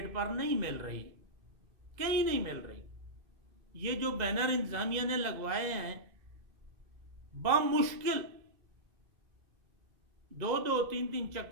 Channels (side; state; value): left; late; 2.0 ms